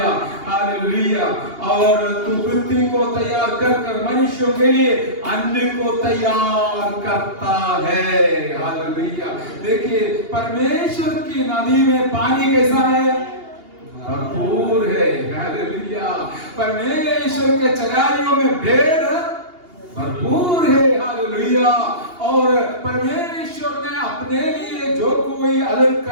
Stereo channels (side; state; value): left; late; 2.8 ms